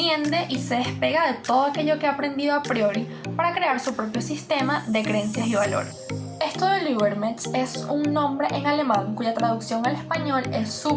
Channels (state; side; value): identical; both; correlation 1.00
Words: y se despega de todo aquello que ha aprendido a priori para crear su propio sistema de creencias y valores. Esto del Übermensch es un nombre en alemán cuya traducción al español es